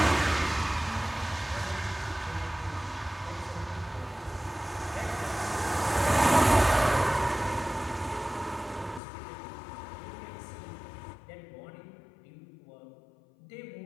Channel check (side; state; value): right; drops out; at 9.0 s